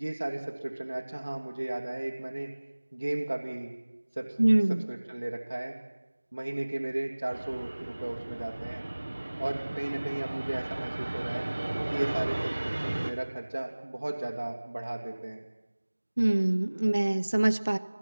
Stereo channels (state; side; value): inverted; both; correlation -1.00